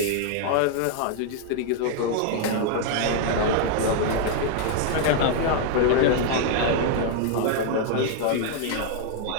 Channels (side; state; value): both; different; correlation 0.00